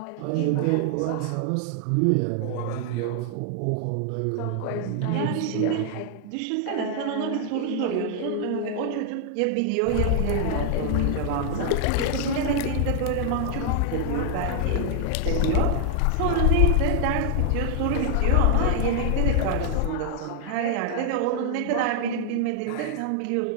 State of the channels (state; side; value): different; both; correlation 0.00